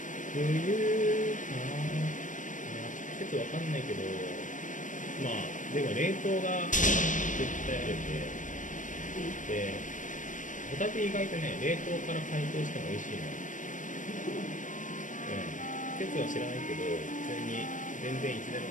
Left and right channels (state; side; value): late; right; 0.37 ms